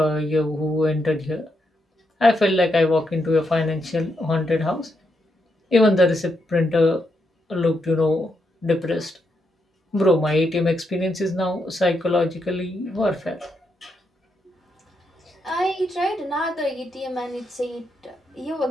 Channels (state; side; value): normal; both; correlation 0.81